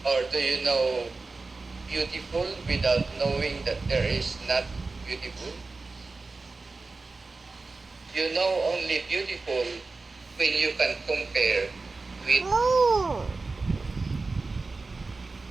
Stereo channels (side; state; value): left; quieter; 3.8 dB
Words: or do you know beautiful without knowing that there is not beautiful? You know only beautiful when you can compare with